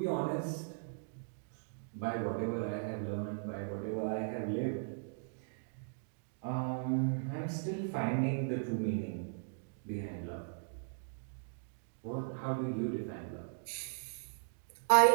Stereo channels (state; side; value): silent; left; digital silence